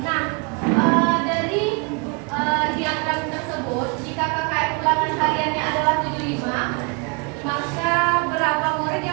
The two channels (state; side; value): quieter; left; 33.0 dB